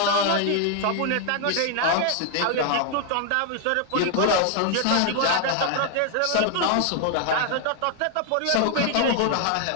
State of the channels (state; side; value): different; both; correlation 0.00